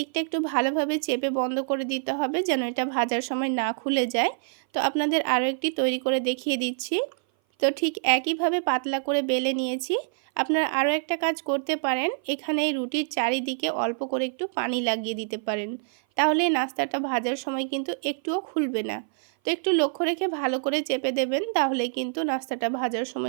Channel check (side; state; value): left; silent; 57 dB below the other